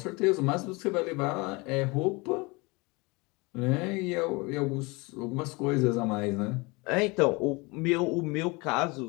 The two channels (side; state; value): right; quieter; 26.2 dB